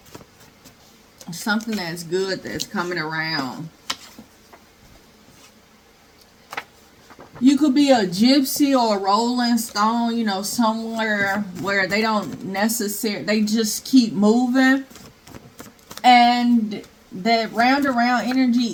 Something that's good that's coming around. You could be a gypsy or a rolling stone, somewhere where they don't necessarily, they just keep moving. And that round around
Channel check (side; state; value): both; identical; correlation 1.00